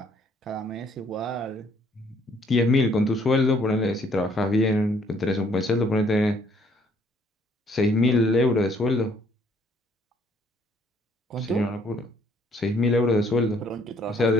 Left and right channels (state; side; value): normal; both; correlation 0.64